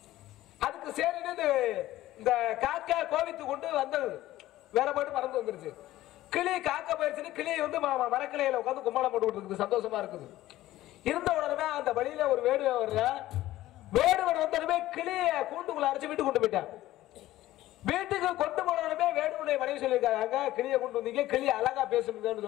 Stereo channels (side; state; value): right; quieter; 15.4 dB